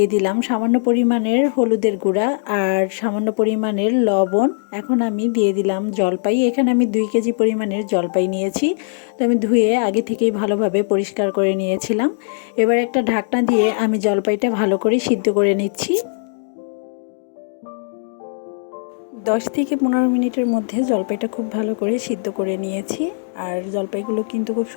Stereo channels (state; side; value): silent; right; digital silence